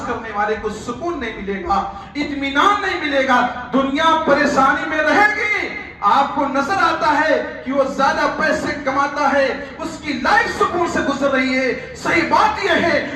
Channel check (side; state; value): both; identical; correlation 1.00